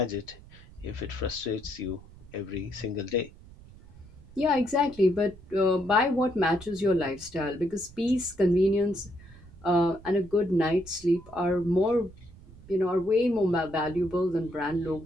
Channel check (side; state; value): right; noise; rumble, 20 dB below the sound